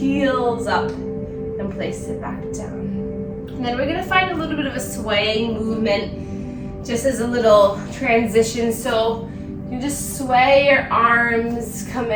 up and place it back down. And then we're gonna find a little bit of a swaying movement just as a little transition. So you just sway your arms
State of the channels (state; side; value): identical; both; correlation 1.00